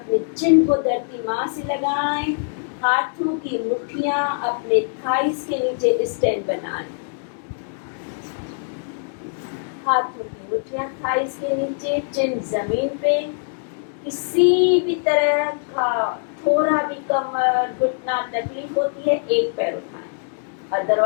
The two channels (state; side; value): silent; right; digital silence